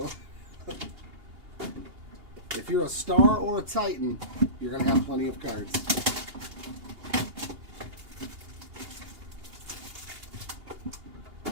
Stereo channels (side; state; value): left; late; 2.8 ms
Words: if you're a star or a Titan, you're gonna have plenty of cards.